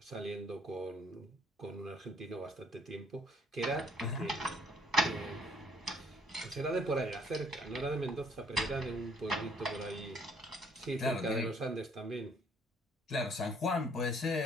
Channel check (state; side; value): normal; both; correlation 0.63